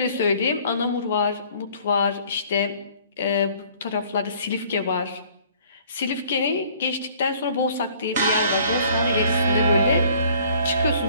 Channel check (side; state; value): both; inverted; correlation -0.56